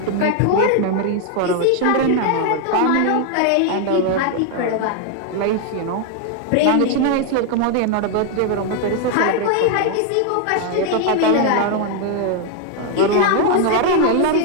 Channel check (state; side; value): different; both; correlation 0.00